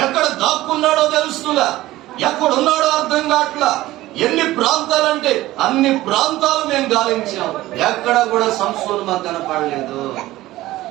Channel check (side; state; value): left; quieter; 16.6 dB